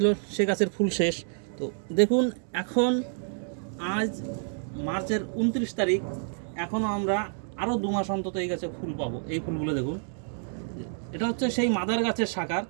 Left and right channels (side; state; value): left; silent; digital silence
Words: সে গাছের ফুল শেষ। তো দেখুন, এখন আজ মার্চের 29 তারিখ, এখনও আমরা আরও 2 মাস অন্তত এই গাছে ফুল পাবো। এই ফুলগুলো দেখুন, এটা হচ্ছে সেই মাদার গাছের শাখার।